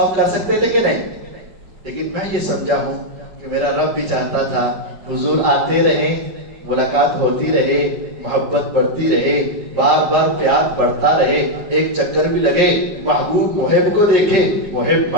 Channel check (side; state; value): left; late; 4.7 ms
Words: کر سکتے تھے کہ نہیں, لیکن میں یہ سمجھا ہوں کہ میرا رب بھی چاہتا تھا حضور آتے رہیں, ملاقات ہوتی رہے, محبت بڑھتی رہے, بار بار پیار بڑھتا رہے, ایک چکر بھی لگے, محبوب محب کو دیکھے, محب